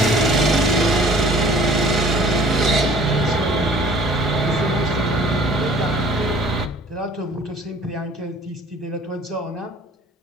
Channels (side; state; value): both; normal; correlation 0.51